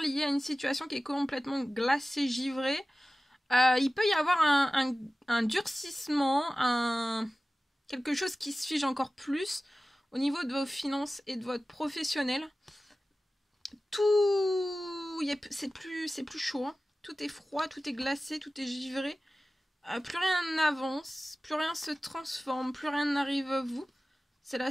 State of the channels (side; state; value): both; normal; correlation 0.96